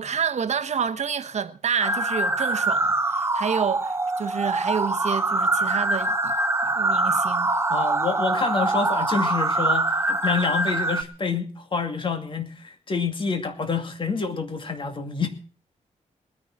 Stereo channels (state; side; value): normal; both; correlation 0.38